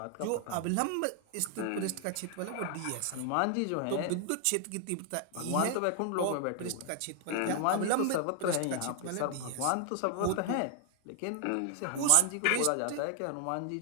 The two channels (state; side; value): different; both; correlation 0.00